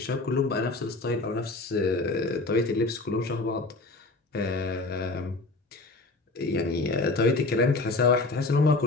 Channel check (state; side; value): quieter; right; 3.2 dB